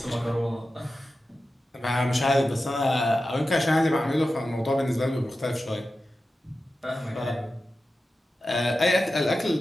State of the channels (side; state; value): both; normal; correlation 0.93